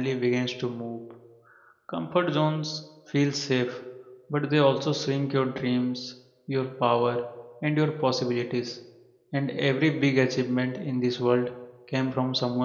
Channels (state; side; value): identical; both; correlation 1.00